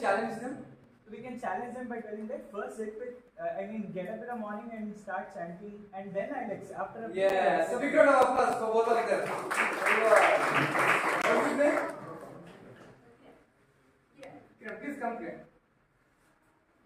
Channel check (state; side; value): identical; both; correlation 1.00